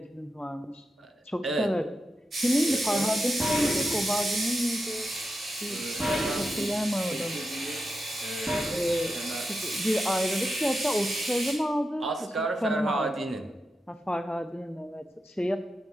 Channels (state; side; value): normal; both; correlation 0.89